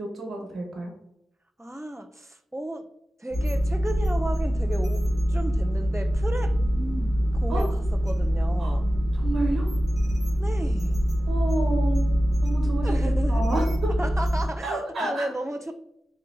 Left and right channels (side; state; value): both; normal; correlation 0.95